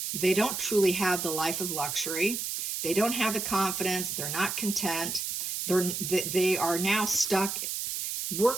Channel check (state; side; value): noise; right; hiss, 3 dB below the sound